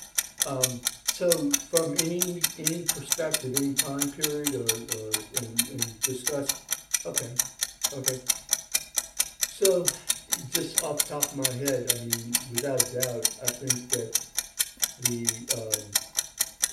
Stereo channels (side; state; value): both; identical; correlation 1.00